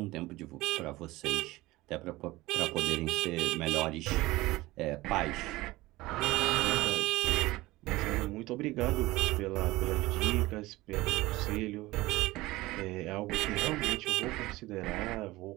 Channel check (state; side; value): quieter; left; 19.3 dB